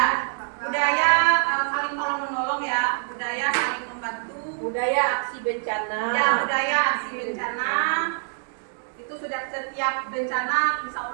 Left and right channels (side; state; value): left; silent; digital silence